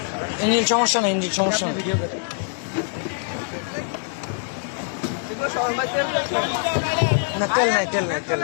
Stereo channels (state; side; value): silent; right; 63 dB below the other